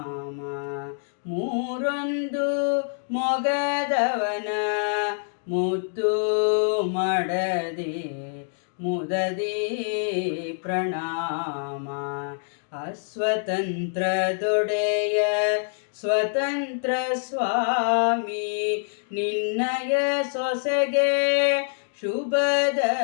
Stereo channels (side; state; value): right; silent; 61 dB below the other